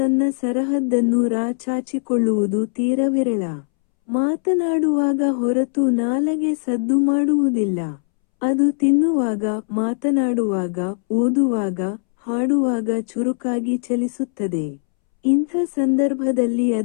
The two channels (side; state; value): right; silent; 66 dB below the other